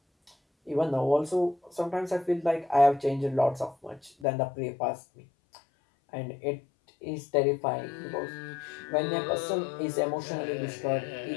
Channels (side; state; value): right; drops out; at 4.2 s